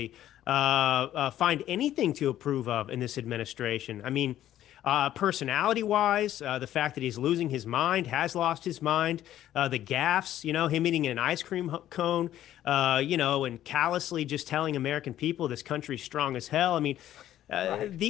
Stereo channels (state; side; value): quieter; right; 12.4 dB